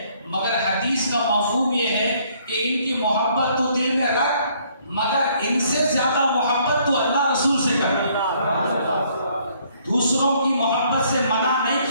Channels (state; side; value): inverted; both; correlation -0.65